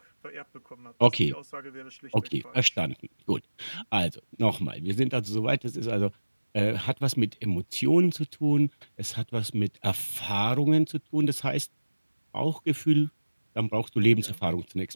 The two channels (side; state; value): both; inverted; correlation -1.00